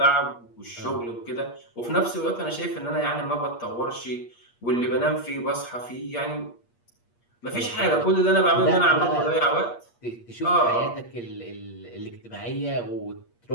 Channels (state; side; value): late; right; 8.5 ms